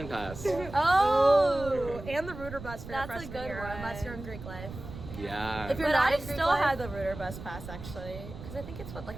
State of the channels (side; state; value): right; noise; rumble, 12 dB below the sound